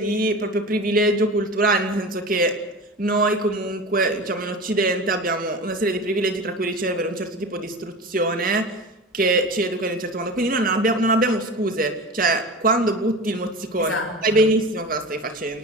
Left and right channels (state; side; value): normal; both; correlation 0.31